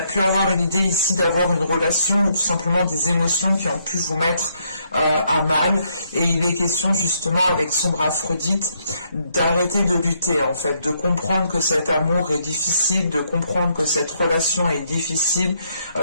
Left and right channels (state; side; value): inverted; both; correlation -0.73